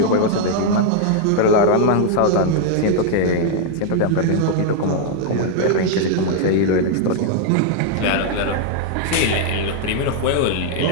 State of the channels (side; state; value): both; different; correlation 0.00